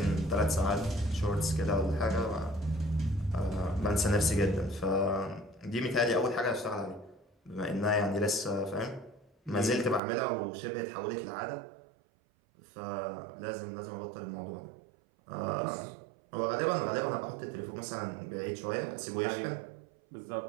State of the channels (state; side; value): drops out; left; at 10.0 s